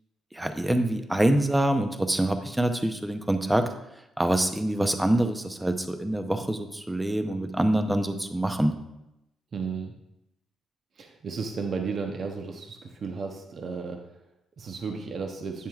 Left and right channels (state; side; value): normal; both; correlation 0.93